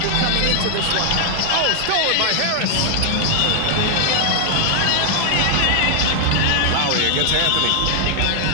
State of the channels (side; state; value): both; different; correlation 0.00